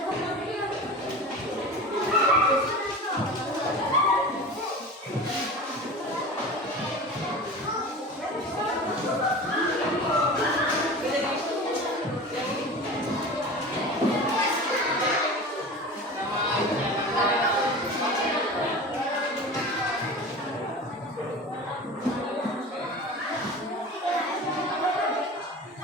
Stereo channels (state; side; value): normal; both; correlation 0.34